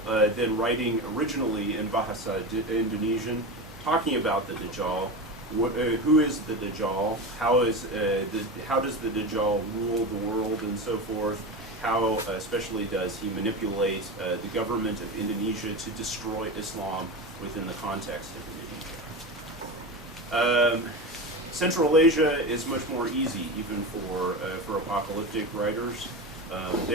then writing originally in Bahasa Indonesian, talking about the Dajjal. Who is the Dajjal? How does the Dajjal rule the world and so forth? How especially does he manipulate the government of Indonesia to destroy Islam within the context of Indonesia? Central Asia is much more easy, even for apocalyptic writers.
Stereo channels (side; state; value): both; normal; correlation 0.23